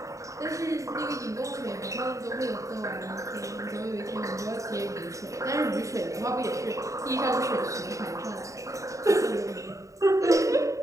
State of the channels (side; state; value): left; late; 0.16 ms